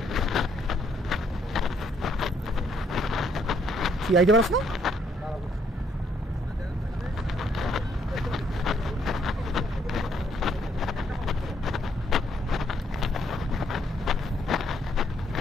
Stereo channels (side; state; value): both; normal; correlation 0.70